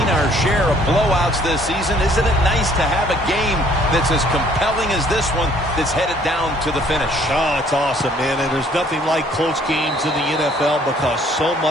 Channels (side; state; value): both; normal; correlation 0.60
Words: our share of blowouts this season. Isn't it nice to have a game that's as compelling as this one that's headed down to the finish? Oh, it's awesome, man. And there's nothing like close games in the NFL because so